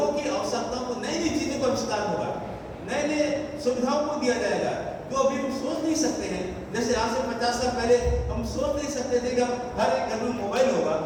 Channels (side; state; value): both; identical; correlation 1.00